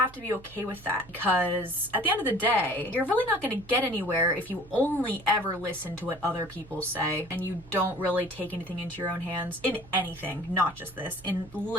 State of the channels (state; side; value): noise; right; hum, 21 dB below the sound